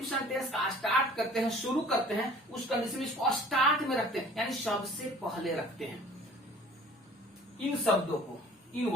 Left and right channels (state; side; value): normal; both; correlation 0.49